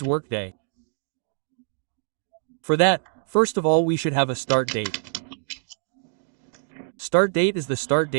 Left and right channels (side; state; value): left; silent; digital silence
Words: Workday? For that, first of all, we should have a start date. Start date is the start